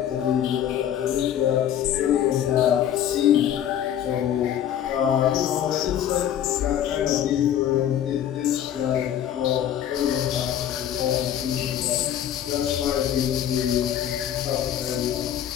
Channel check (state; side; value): quieter; right; 10.4 dB